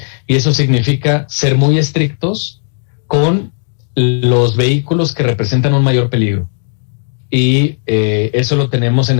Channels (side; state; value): right; silent; 70 dB below the other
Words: Y eso significa ser muy estrictos con los vehículos que representan un mayor peligro. Y eso lo tenemos en